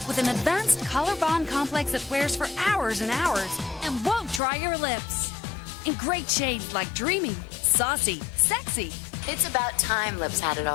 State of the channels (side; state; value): right; drops out; at 4.4 s